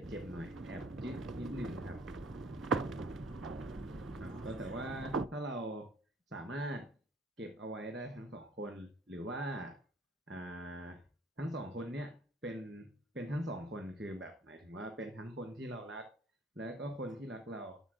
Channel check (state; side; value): normal; both; correlation 0.56